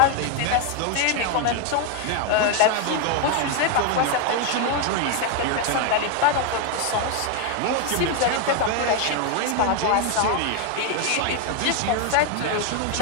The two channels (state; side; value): different; both; correlation 0.01